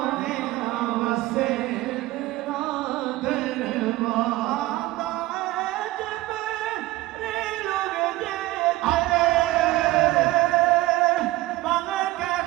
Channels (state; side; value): quieter; left; 18.4 dB